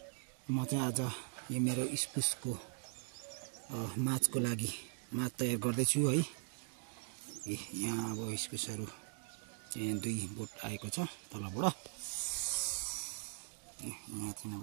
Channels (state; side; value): silent; left; 51 dB below the other